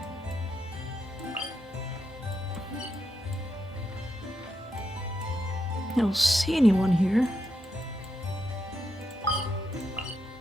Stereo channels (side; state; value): both; normal; correlation 0.83